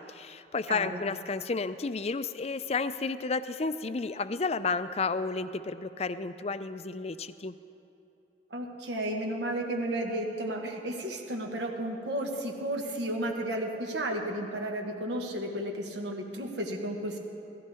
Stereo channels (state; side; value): normal; both; correlation 0.14